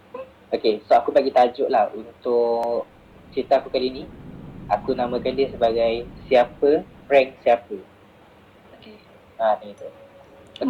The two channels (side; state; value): both; identical; correlation 1.00